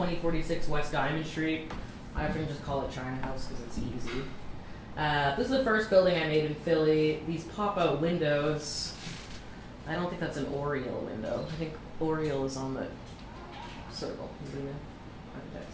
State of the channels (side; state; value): both; identical; correlation 1.00